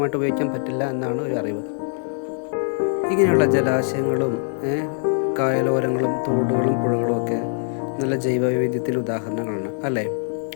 ഉപയോഗിക്കാൻ പറ്റില്ല എന്നാണ് ഒരു അറിവ്. ഇങ്ങനെയുള്ള ജലാശയങ്ങളും കായലോരങ്ങളും തോടുകളും പുഴകളും ഒക്കെ നല്ല ജൈവവൈവിധ്യത്തിൻ്റെ ഉദാഹരണങ്ങളാണ് അല്ലേ?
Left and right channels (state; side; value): silent; right; 64 dB below the other